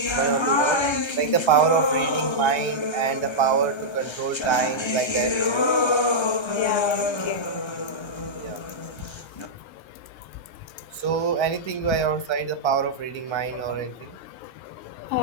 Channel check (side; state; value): right; late; 1.3 ms